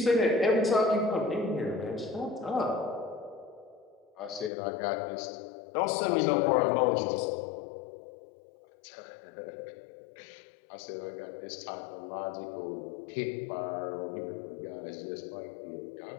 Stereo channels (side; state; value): right; drops out; at 4.5 s